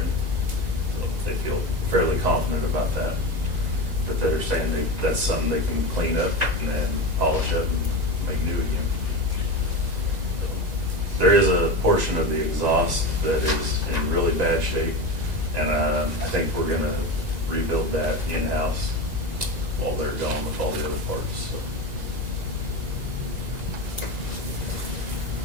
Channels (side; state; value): left; late; 2.0 ms